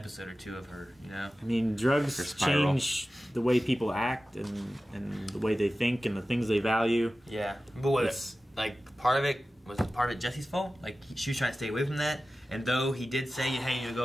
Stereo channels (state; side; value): normal; both; correlation 0.95